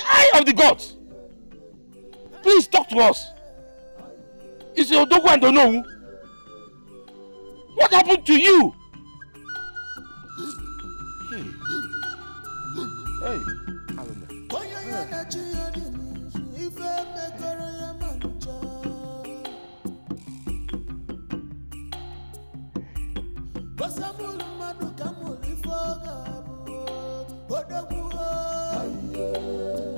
eye of the gods! Please talk to us! Is your Odogu and Onowu? What happened to you? Hey,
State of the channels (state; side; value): inverted; both; correlation -1.00